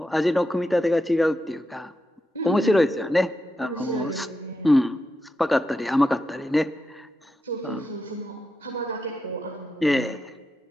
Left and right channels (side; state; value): both; normal; correlation 0.87